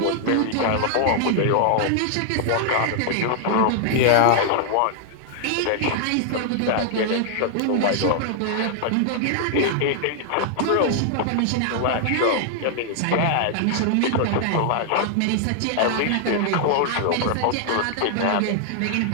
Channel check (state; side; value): different; both; correlation 0.00